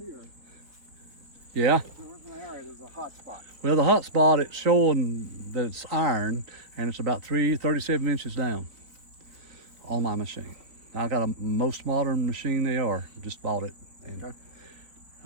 Yeah. there's an area, there's a hot spot. Well, the hot spot, it's showing that it's iron, and it's about 37 inches down on my machine. I got a most modern machine they are. Just bought it, and, Okay.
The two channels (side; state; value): left; late; 4.2 ms